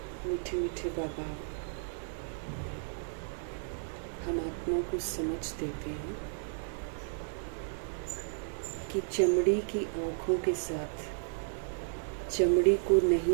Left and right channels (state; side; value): silent; left; digital silence